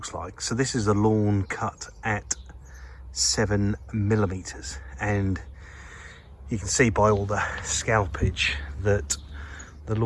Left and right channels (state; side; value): identical; both; correlation 1.00